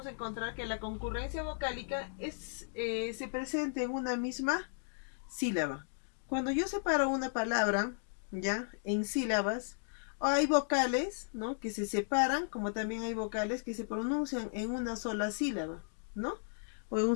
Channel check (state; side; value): silent; right; digital silence